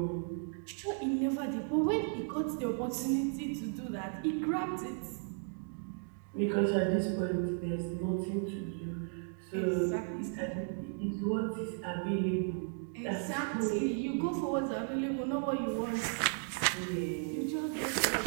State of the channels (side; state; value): left; silent; 55 dB below the other